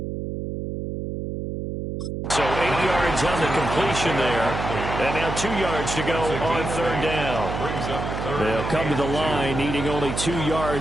So 8 yards on the completion there. And now 2 yards to go on 3rd down. They'll come to the line, needing only 2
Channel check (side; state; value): right; noise; hum, 5 dB below the sound